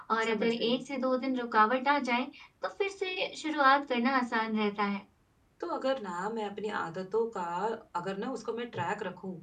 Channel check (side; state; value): both; identical; correlation 1.00